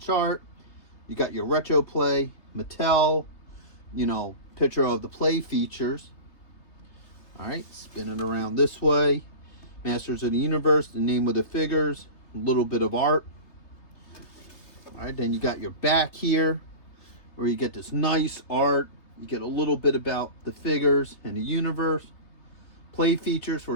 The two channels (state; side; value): late; right; 3.3 ms